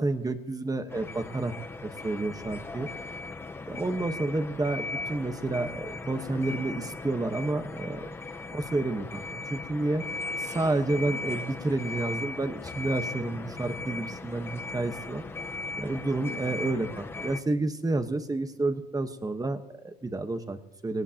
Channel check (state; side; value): normal; both; correlation 0.82